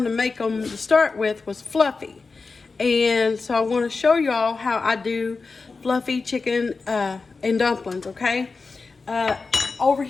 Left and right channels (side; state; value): right; quieter; 4.2 dB